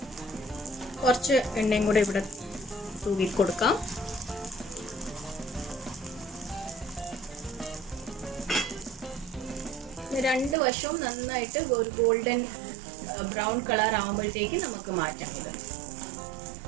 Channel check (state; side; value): drops out; left; at 10.6 s